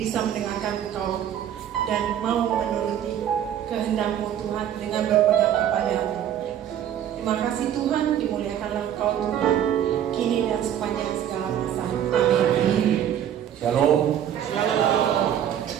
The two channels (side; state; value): left; quieter; 10.2 dB